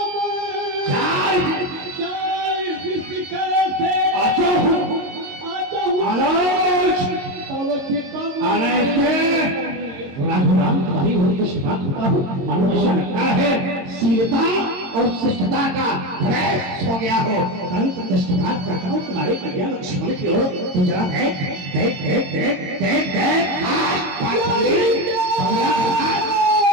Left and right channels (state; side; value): late; left; 22 ms